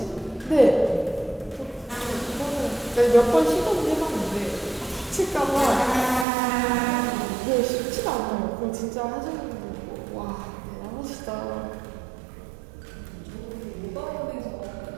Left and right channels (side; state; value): left; drops out; at 6.2 s